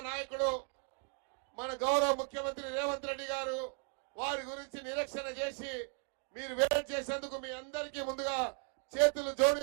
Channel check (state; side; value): quieter; left; 35.5 dB